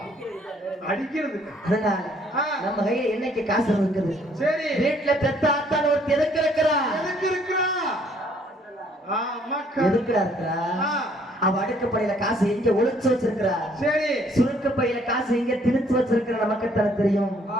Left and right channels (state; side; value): normal; both; correlation 0.63